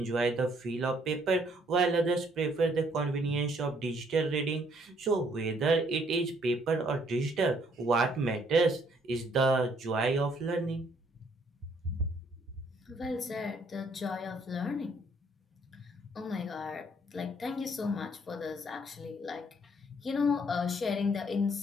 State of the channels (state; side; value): normal; both; correlation 0.66